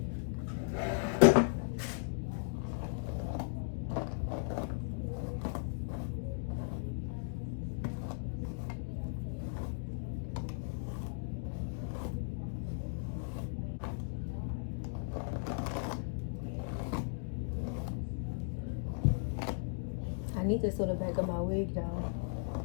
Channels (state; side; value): silent; right; digital silence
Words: I need to sew the back of my wig down.